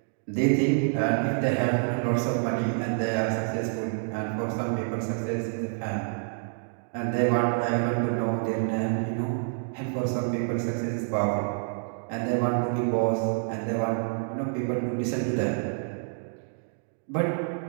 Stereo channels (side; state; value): left; silent; digital silence